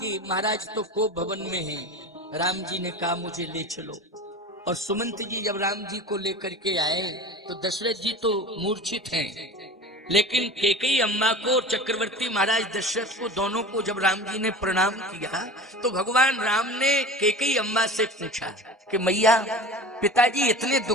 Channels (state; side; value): normal; both; correlation 0.36